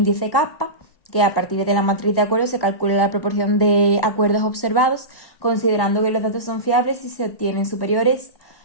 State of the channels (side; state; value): right; late; 1.1 ms